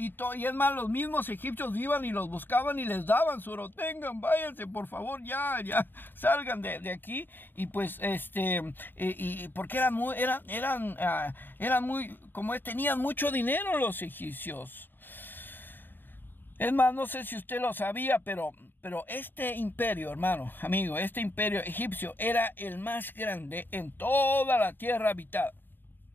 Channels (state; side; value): late; right; 0.094 ms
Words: es más, los mismos egipcios iban y los buscaban y les daban su oro. Tengan, váyanse, por favor, ya salgan de aquí. Y pues y porque eran muy, como tenían mucho dinero los egipcios. Es más, no sé si usted lo sabía, pero este imperio, hermano, amigo, este imperio egipcio era el más grande en toda la tierra habitada.